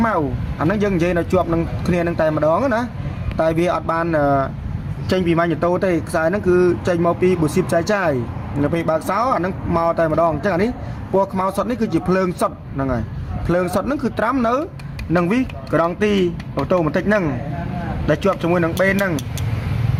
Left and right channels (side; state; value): both; identical; correlation 1.00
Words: មៅអាហ្នឹងយើងនិយាយនៅជាប់នឹងគ្នានឹងតែម្ដងណាតែវាអត់បានចេញពី Magneto ទេខ្សែហ្នឹងគឺចេញមកពីប៊ូស៊ីបចាយនៅពេលបើកសោអាហ្នឹងមកតែម្ដងអញ្ចឹងអានេះពណ៌ខ្មៅសុទ្ធនេះគឺជាភ្លើងសុទ្ធហ្នឹងហើយភ្លើងសុទ្ធហ្នឹងគឺត្រាំនៅនឹងវីក្រងទីអូតូម៉ាទិកហ្នឹងដែលជាប់ជាមួយនឹងបេនហ្នឹង